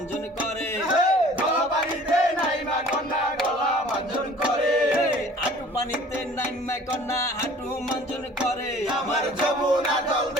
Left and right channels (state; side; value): normal; both; correlation 0.49